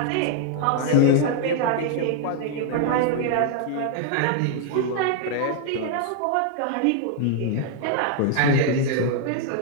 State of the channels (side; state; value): both; different; correlation 0.00